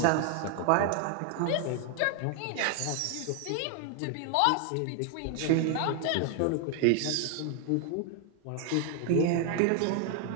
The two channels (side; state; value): both; different; correlation 0.00